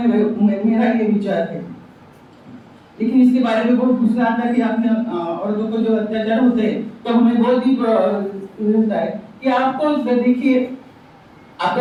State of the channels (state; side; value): identical; both; correlation 1.00